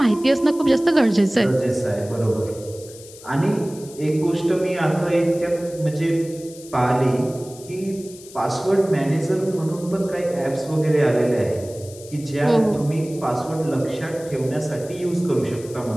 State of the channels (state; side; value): noise; left; hiss, 19 dB below the sound